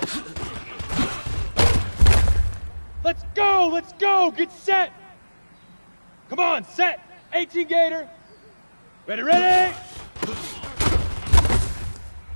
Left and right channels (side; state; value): both; inverted; correlation -1.00